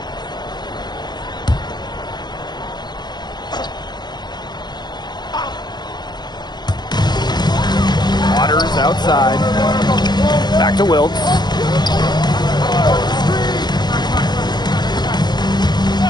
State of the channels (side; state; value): right; late; 0.21 ms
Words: Waters outside. Back to Wilkes.